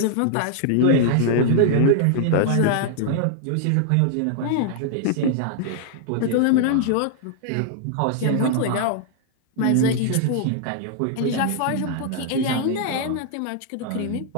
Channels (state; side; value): different; both; correlation -0.01